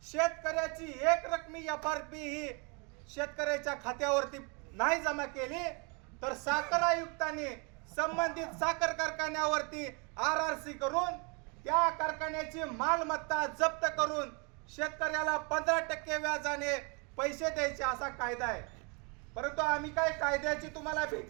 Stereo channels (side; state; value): left; quieter; 33.0 dB